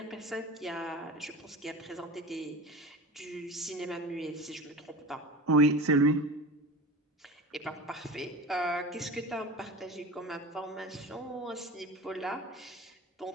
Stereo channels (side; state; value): both; normal; correlation 0.31